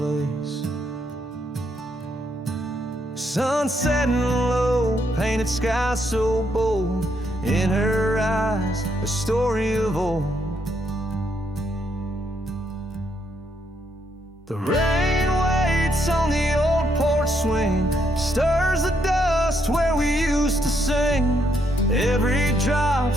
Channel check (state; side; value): normal; both; correlation 0.75